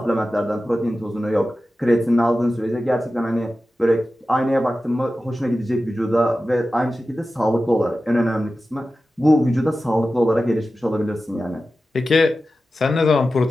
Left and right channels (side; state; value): both; normal; correlation 0.94